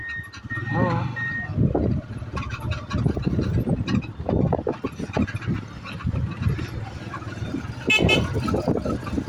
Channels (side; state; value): both; identical; correlation 1.00